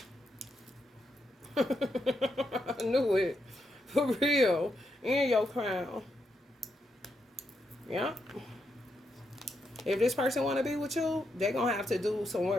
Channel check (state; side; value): normal; both; correlation 0.81